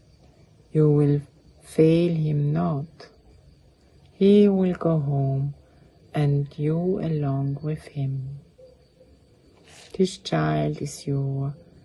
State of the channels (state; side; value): identical; both; correlation 1.00